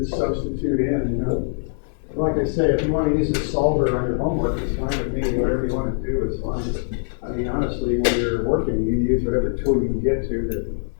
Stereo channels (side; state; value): right; silent; digital silence